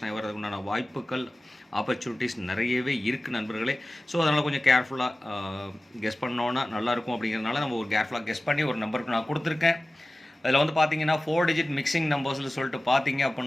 ஆகி வர்றதுக்குண்டான வாய்ப்புகள் ஆப்பர்ச்சுனிட்டிஸ் நிறையவே இருக்குது நண்பர்களே. ஸோ அதனால் கொஞ்சம் கேர்ஃபுல்லாக கெஸ் பண்ணோன்னா நல்லாயிருக்கும். அப்படிங்கிறதுனால நம்ம ஒரு கேர்ஃபுல்லாக கெஸ் பண்ணி ஒரு நம்பருக்கு நான் கொடுத்துருக்கேன். அதில் வந்து பார்த்தீங்கன்னா 4 டிஜிட் மிக்சிங் நம்பர்ஸில் சொல்லிட்டு பார்த்தீங்க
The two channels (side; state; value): both; normal; correlation 0.96